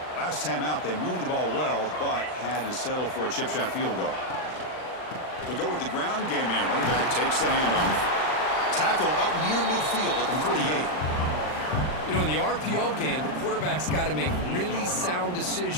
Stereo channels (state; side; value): late; right; 39 ms